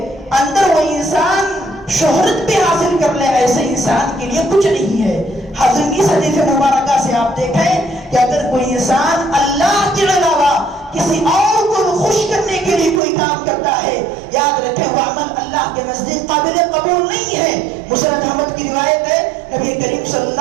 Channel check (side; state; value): left; drops out; at 13.0 s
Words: اندر وہ انسان شہرت بھی حاصل کر لے، ایسے انسان کے لیے کچھ نہیں ہے۔ حضرت اس حدیث مبارکہ سے آپ دیکھیں کہ اگر کوئی انسان اللہ کے علاوہ کسی اور کو خوش کرنے کے لیے کوئی کام کرتا ہے، یاد رکھیں وہ عمل اللہ کے نزدیک قابل قبول نہیں ہے۔ مسند احمد کی روایت ہے، نبی کریم صلی